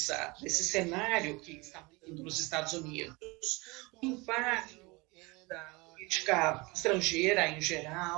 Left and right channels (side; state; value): left; quieter; 25.3 dB